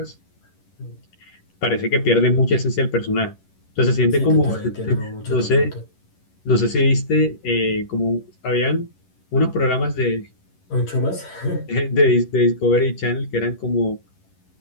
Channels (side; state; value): right; late; 11 ms